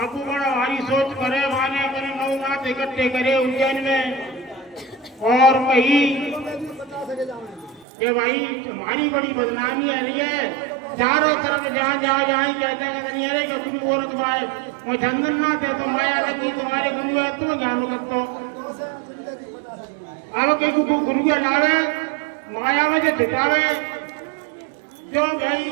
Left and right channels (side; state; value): left; drops out; at 7.9 s